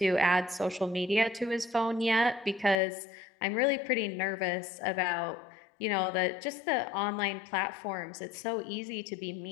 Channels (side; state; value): right; drops out; at 2.8 s